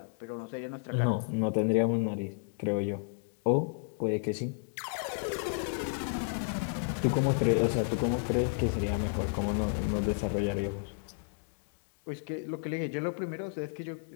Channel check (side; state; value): right; silent; digital silence